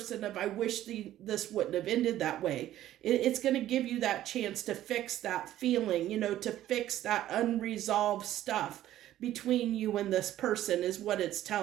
of, I wish this wouldn't have ended that way. It's going to give you that chance to fix that feeling, to fix that unresolved stuff between you and this person, is what it's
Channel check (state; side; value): quieter; left; 13.2 dB